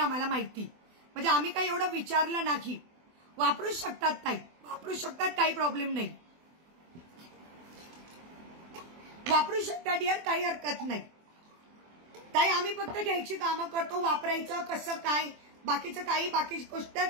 माहिती, म्हणजे आम्ही काही एवढं विचारलं नाही. वापरू शकतात ताई, वापरू शकतात, काही प्रॉब्लेम नाही. वापरू शकता डिअर, काही हरकत नाही. ताई आम्ही फक्त घ्यायची कामं करतो. वापरायचं कसं काय, बाकीचं काही बाकी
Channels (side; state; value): left; late; 24 ms